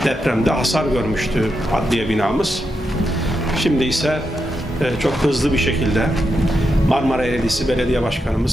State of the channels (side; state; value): both; normal; correlation 0.85